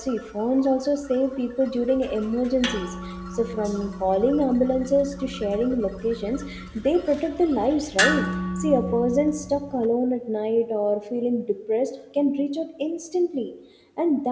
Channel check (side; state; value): both; identical; correlation 1.00